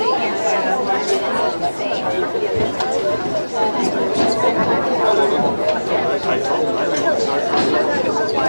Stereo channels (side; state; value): both; inverted; correlation -1.00